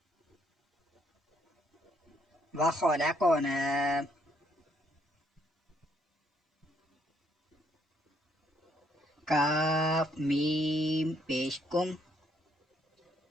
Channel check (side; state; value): both; normal; correlation 0.70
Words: वखलकना। काफ मीम पेश कुम।